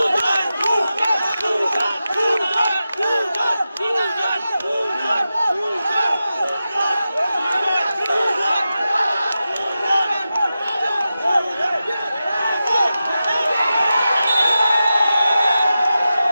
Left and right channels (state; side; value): inverted; both; correlation -0.92